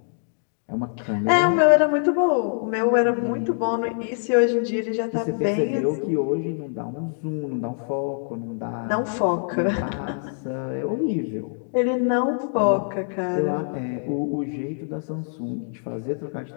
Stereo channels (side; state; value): right; silent; 62 dB below the other